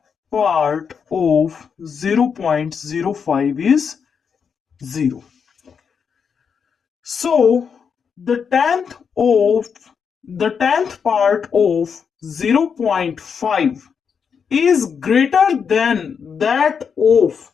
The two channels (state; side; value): quieter; right; 6.5 dB